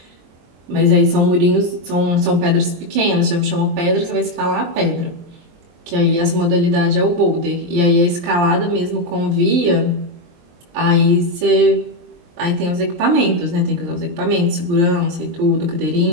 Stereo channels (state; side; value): late; left; 23 ms